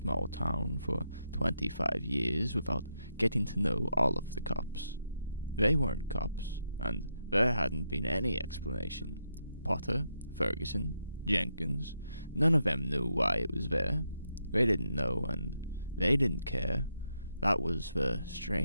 town for 25 years without getting to know all of the cops. They weren't cops, and there hadn't been any explanation. Potter, Ferguson, Jenkins, none of them knew why it was there. They didn't know, and they didn't care. That was the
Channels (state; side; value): inverted; both; correlation -0.82